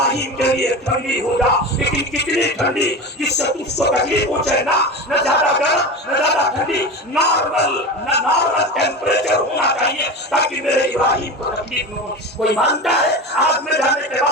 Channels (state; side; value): normal; both; correlation 0.27